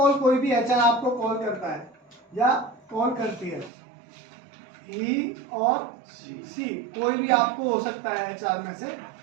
कोई भी एचआर आपको कॉल करता है या कॉल करती है, ही और सी कोई भी आपको हो सकता है एचआर में से।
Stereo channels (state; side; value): drops out; left; at 3.7 s